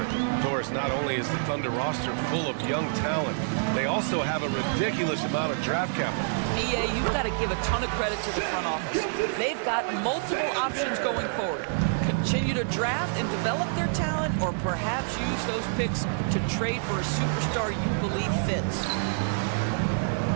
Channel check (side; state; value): left; silent; digital silence